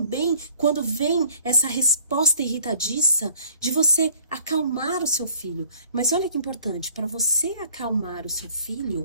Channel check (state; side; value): inverted; both; correlation -0.55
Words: quando vem essa resposta irritadiça de você acalmar o seu filho. Mas olha que importante, para você acalmar o seu